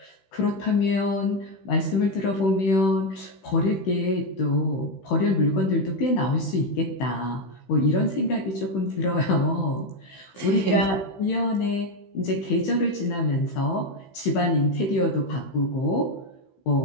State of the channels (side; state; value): right; late; 16 ms